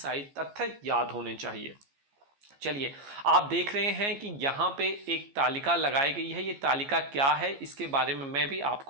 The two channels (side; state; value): left; late; 14 ms